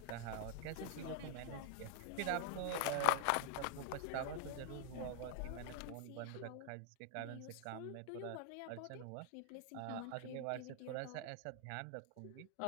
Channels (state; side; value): different; both; correlation 0.00